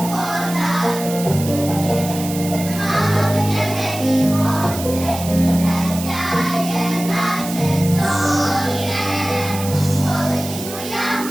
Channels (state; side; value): noise; right; hiss, 10 dB below the sound